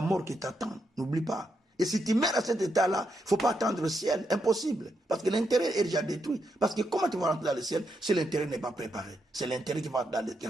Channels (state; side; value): normal; both; correlation 0.81